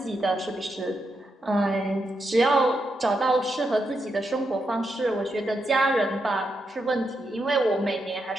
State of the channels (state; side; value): normal; both; correlation 0.84